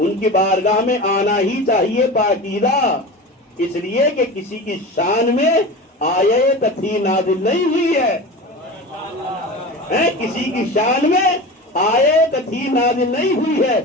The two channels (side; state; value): both; normal; correlation 0.30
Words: کی بارگاہ میں آنا ہی چاہیے پاکیزہ، اس لیے کہ کسی کی شان میں آیت تھی نازل نہیں ہوئی ہے، کسی کی شان میں آیت تھی نازل نہیں ہوئی ہے،